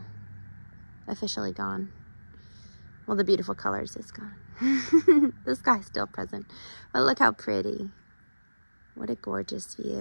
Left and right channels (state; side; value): inverted; both; correlation -1.00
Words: officially gone. Well, the beautiful colors is gone. The sky's still present, but look how pretty. What a gorgeous